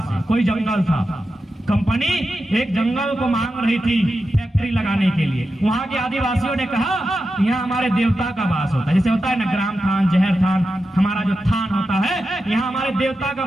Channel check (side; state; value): both; normal; correlation 0.90